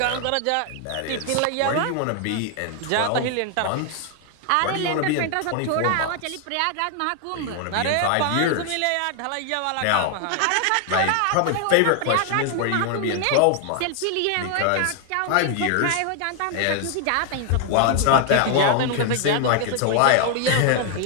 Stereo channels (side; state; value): both; different; correlation 0.00